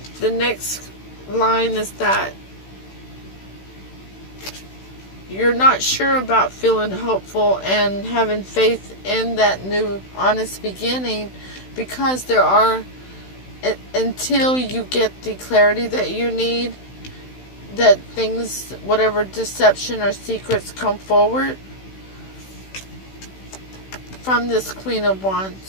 the next line is that you're not sure about feeling hopeful and having faith in that new honest beginning, because there are, until you get the clarity that you need, that things, whatever deception or secrets come forward from this Queen of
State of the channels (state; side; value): late; right; 16 ms